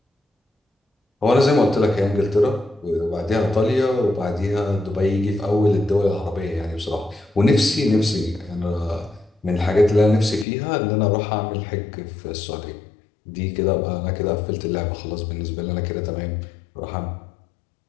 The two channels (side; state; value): right; drops out; at 10.5 s